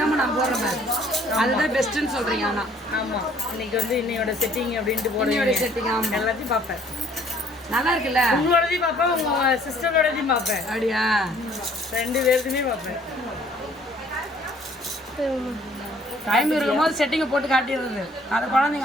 நான் போடுறேன். அதுதான் பெஸ்ட்னு சொல்றீங்க. ஆனா ஆமா இன்னைக்கு வந்து இன்னையோட செட்டிங் அப்படின்ட்டு போடுவோட செட்டிங் எல்லாத்தையும் பார்ப்பேன். நல்லா இருக்குல்ல. உங்களோடதையும் பார்ப்பேன், உங்க சிஸ்டரோடதையும் பார்ப்பேன். அப்படியா? 2 பேருக்குமே பார்ப்பேன். டைம் இருக்கும்போது செட்டிங்கை போட்டு காட்டிடுறது. அதை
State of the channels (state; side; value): normal; both; correlation 0.59